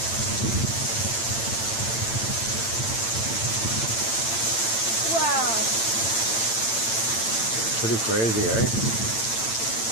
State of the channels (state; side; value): late; right; 8.9 ms